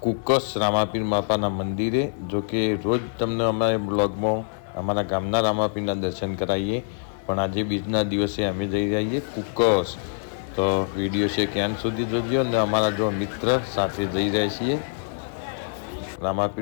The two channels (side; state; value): right; silent; digital silence